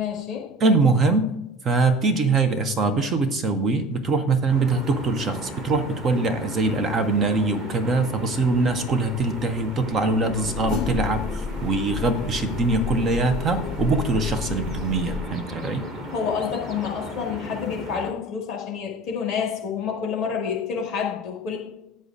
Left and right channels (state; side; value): normal; both; correlation 0.42